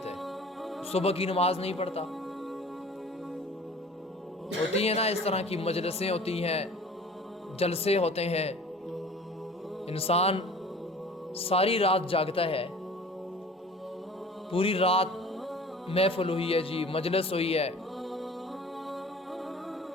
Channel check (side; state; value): both; normal; correlation 0.45